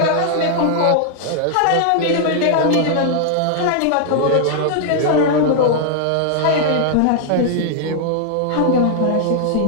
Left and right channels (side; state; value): both; different; correlation -0.01